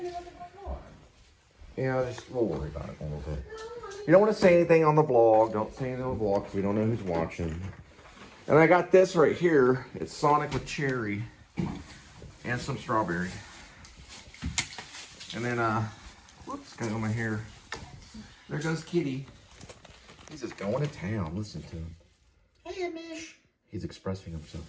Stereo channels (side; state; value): both; identical; correlation 1.00